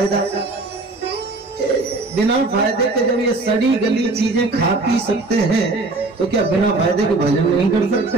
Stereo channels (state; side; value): quieter; left; 3.2 dB